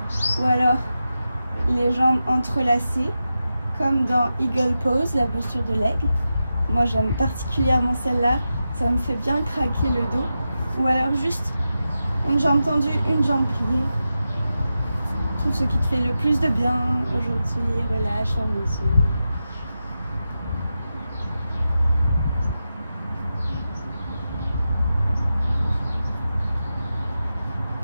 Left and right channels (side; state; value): both; inverted; correlation -0.91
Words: ou alors les jambes entrelacées, comme dans Eagle Pose, la posture de l'aigle. Moi j'aime particulièrement celle-là, ça me fait bien craquer le dos. Ou alors juste une jambe tendue, une jambe pliée. Tout ce qui te fait le plus de bien aujourd'hui, relâche, ferme les yeux.